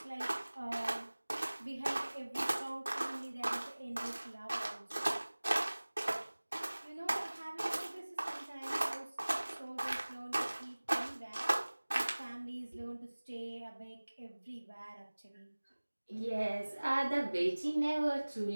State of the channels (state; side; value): inverted; both; correlation -1.00